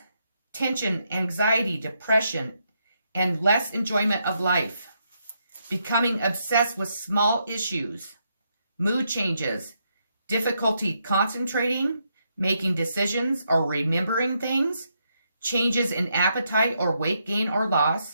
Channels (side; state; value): both; inverted; correlation -0.79